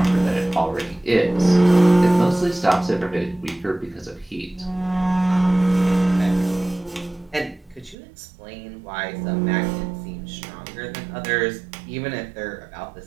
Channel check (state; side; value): drops out; left; at 8.0 s